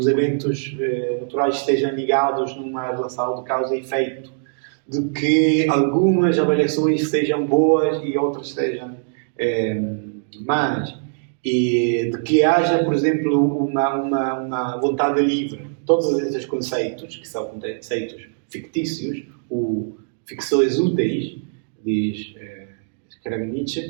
eventos naturais estejam ligados numa relação de causa e efeito, de que algumas avaliações sejam boas e outras sejam más, e de que haja, por exemplo, uma vontade livre. Todos esses conceitos, que são conceitos fictícios, ou ficções úteis, diz escreve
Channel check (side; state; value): left; silent; digital silence